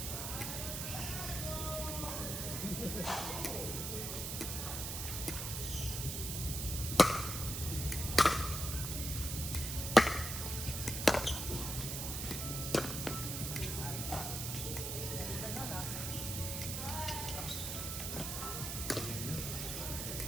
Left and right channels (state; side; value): noise; right; hiss, 3 dB below the sound